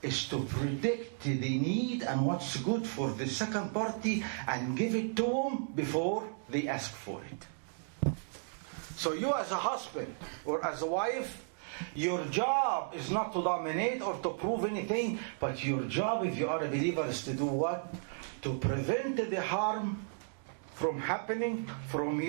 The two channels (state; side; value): silent; left; digital silence